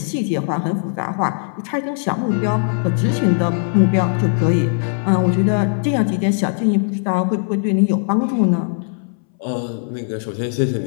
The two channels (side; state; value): right; silent; 63 dB below the other